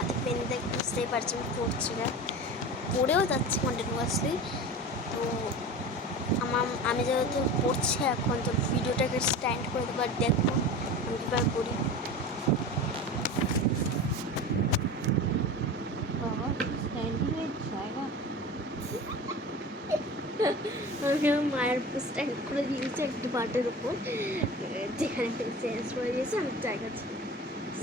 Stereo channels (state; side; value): normal; both; correlation 0.33